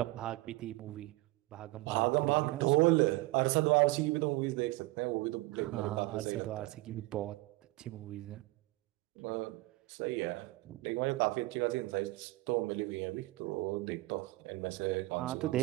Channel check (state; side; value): quieter; left; 20.8 dB